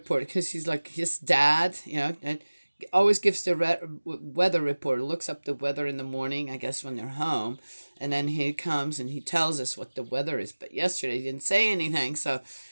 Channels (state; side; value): inverted; both; correlation -1.00